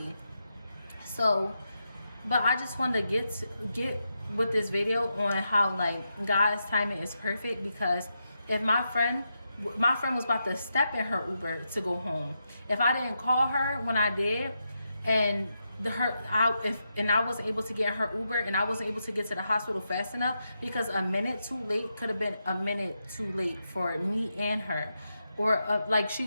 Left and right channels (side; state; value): both; inverted; correlation -0.85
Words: So, but I just wanted to get with this video on how like God's timing is perfect, because if my friend was about to step in her Uber to go home, if I didn't call her when I did, and I wasn't able to get her Uber, and I wasn't able to get to the hospital fast enough because a minute too late could have been a minute too late for me and her. Or like